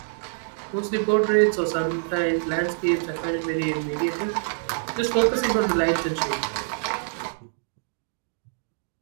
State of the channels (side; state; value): left; silent; digital silence